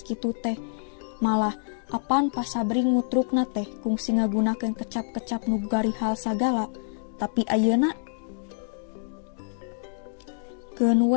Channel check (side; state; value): right; silent; digital silence